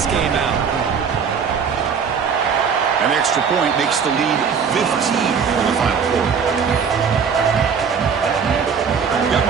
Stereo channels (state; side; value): quieter; left; 6.5 dB